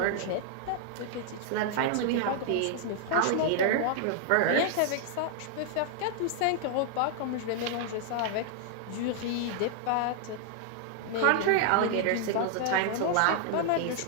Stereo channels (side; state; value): both; different; correlation -0.01